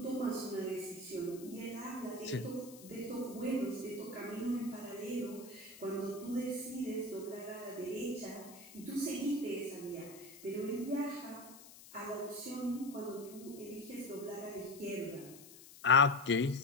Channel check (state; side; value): noise; left; hiss, 18 dB below the sound